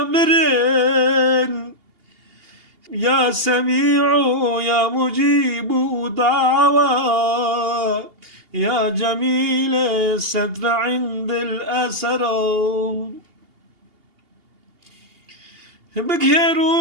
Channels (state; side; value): late; left; 2.8 ms